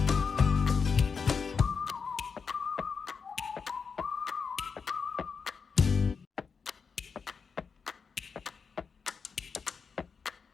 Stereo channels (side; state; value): right; quieter; 5.6 dB